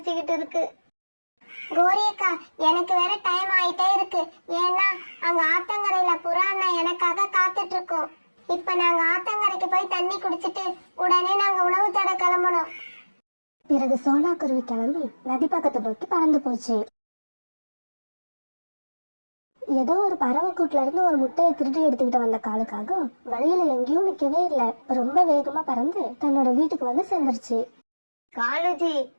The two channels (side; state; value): both; inverted; correlation -1.00